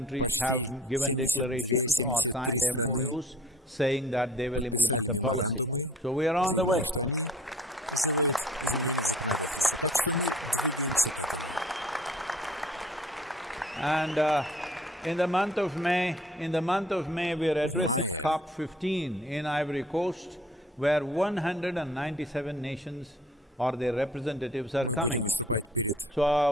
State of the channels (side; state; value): both; normal; correlation 0.53